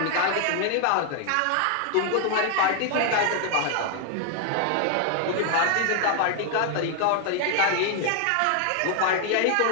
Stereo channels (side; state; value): both; different; correlation 0.00